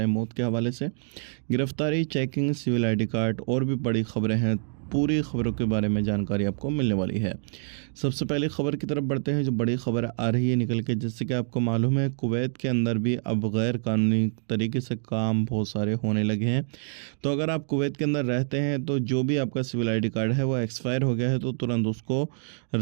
मौत के हवाले से गिरफ्तारी, चेकिंग, सिविल आईडी कार्ड और भी बड़ी खबरें हैं। पूरी खबरों के बारे में जानकारी आपको मिलने वाली है। सबसे पहले खबर की तरफ बढ़ते हैं, जो बड़ी खबर आ रही है निकल के। जैसे कि आपको मालूम है, कुवैत के अंदर भी अब गैर कानूनी तरीके से काम बहुत सारे होने लगे हैं। तो अगर आप कुवैत के अंदर रहते हैं तो जो भी आपका सिविल आईडी कार्ड है वो एक्सपायर हो गया है तो तुरंत उसको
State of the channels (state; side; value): silent; left; 61 dB below the other